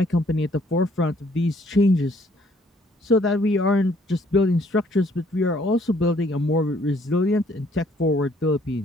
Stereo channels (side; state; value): both; normal; correlation 0.64